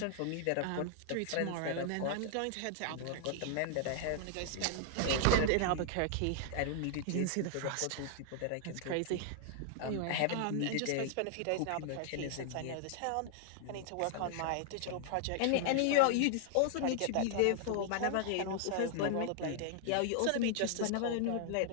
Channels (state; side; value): different; both; correlation -0.01